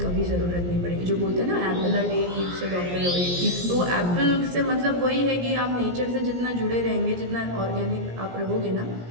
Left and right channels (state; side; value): late; left; 17 ms